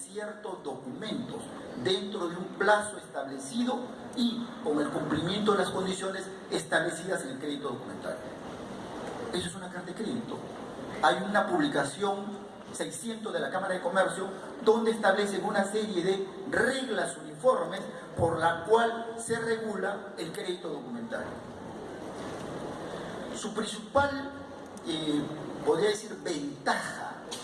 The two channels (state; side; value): identical; both; correlation 1.00